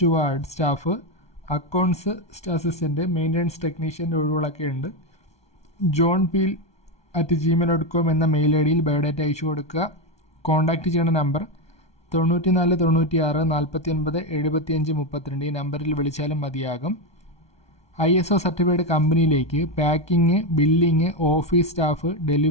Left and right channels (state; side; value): late; right; 1.2 ms